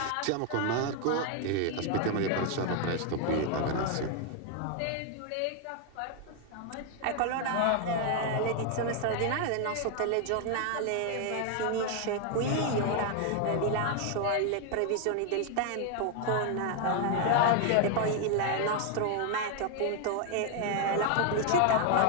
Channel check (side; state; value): both; different; correlation 0.00